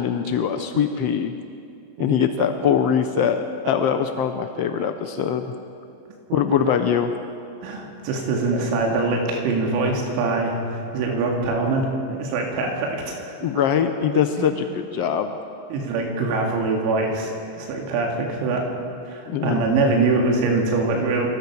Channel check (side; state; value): left; late; 23 ms